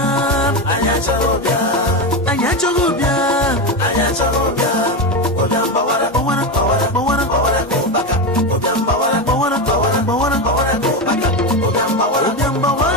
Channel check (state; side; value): normal; both; correlation 0.15